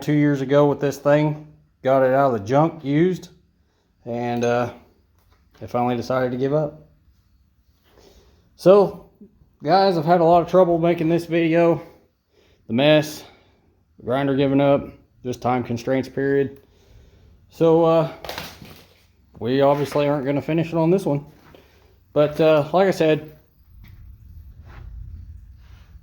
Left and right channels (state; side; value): identical; both; correlation 1.00